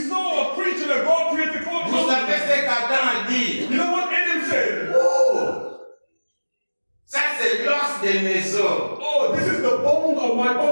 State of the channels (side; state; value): both; inverted; correlation -1.00